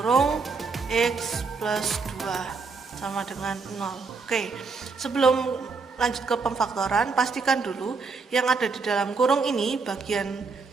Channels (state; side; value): quieter; left; 4.6 dB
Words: x plus 2 sama dengan 0. Oke, sebelum lanjut ke pemfaktoran, pastikan dulu yang ada di dalam kurung ini, bagian